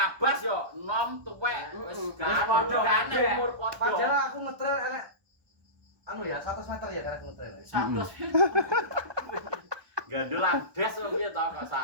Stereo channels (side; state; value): left; late; 1.2 ms